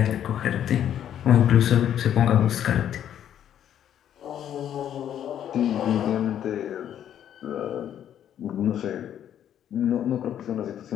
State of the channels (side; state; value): right; quieter; 10.2 dB